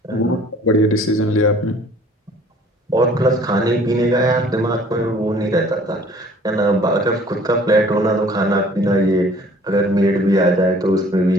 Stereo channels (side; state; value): both; normal; correlation 0.53